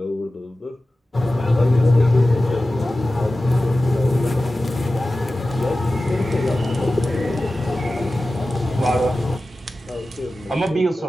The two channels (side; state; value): both; normal; correlation 0.95